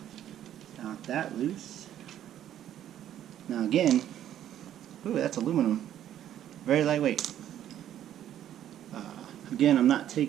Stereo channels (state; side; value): quieter; left; 11.2 dB